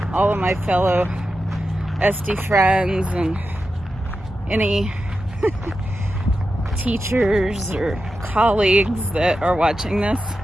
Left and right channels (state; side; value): normal; both; correlation 0.90